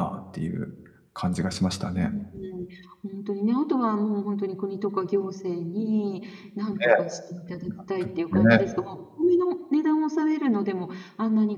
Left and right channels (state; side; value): identical; both; correlation 1.00